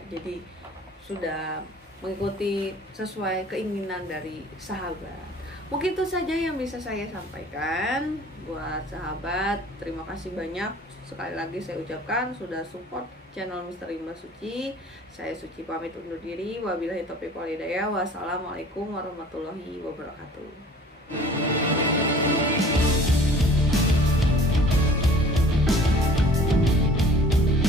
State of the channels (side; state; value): both; normal; correlation 0.49